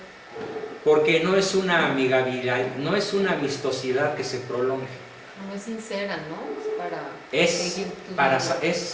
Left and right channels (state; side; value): identical; both; correlation 1.00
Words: Porque no es una amigabilidad, no es una amistosidad que se prolongue. No es sincera, ¿no? Es seguir tus para reglas.